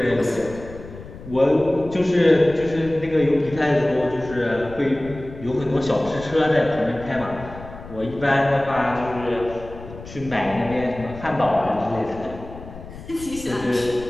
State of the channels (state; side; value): noise; left; rumble, 15 dB below the sound